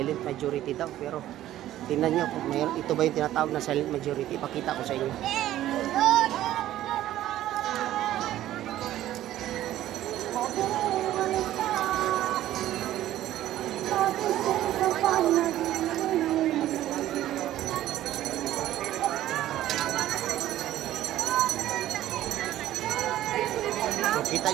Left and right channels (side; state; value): left; quieter; 13.5 dB